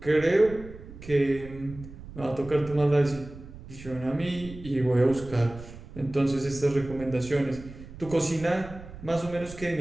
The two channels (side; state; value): right; noise; rumble, 15 dB below the sound